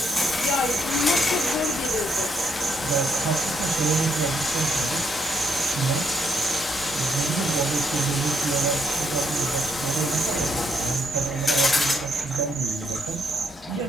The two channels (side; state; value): both; normal; correlation 0.74